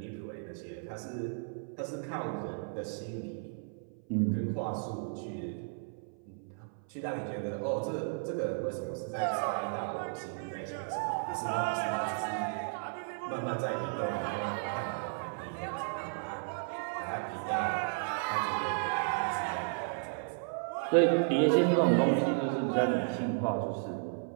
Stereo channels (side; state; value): left; silent; 55 dB below the other